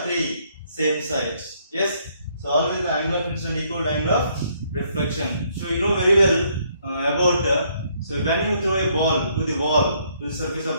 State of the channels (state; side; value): inverted; both; correlation -0.69